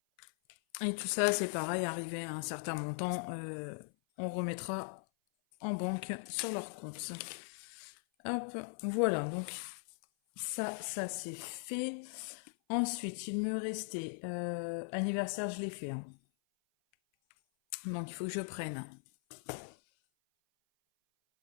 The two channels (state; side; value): silent; right; 52 dB below the other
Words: Et tout ça, c'est pareil, arrivé à un certain montant, on remettra en banque sur leur compte. Hop, voilà, donc ça c'est fait. Ensuite, il me restait anniversaire, je l'ai fait, hein. Donc il faut que je prenne.